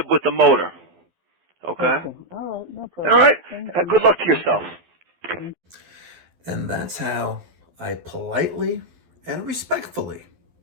with the motor. Okay? Okay, all right, no All problem. right? Thank you. Good luck to Okay. yourself. And that's how I politely and respectfully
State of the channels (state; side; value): late; left; 12 ms